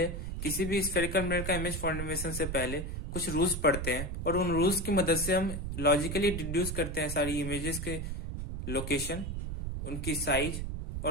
किसी भी स्फेरिकल मिरर का इमेज फॉर्मेशन से पहले कुछ रूल्स पढ़ते हैं और उन रूल्स की मदद से हम लॉजिकली डिड्यूस करते हैं सारी इमेजेस के लोकेशन, उनकी साइज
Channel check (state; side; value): noise; right; rumble, 4 dB below the sound